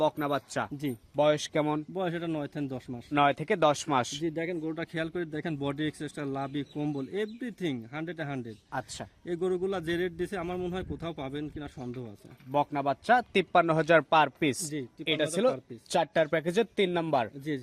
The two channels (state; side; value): identical; both; correlation 1.00